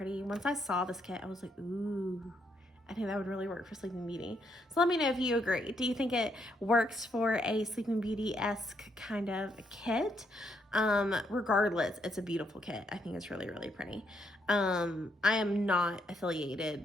Once I saw this kit, I was like, ooh, I think that would really work for Sleeping Beauty. So let me know if you agree. Do you think it works for a Sleeping Beauty-esque kind of kit? Regardless, it's a beautiful kit. I think it's really, really pretty. I am not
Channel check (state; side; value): normal; both; correlation 0.76